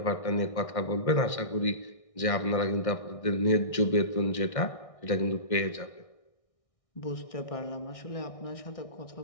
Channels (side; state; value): right; late; 1.6 ms